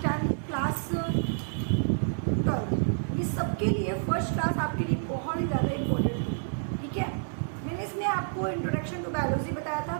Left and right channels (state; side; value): silent; left; 59 dB below the other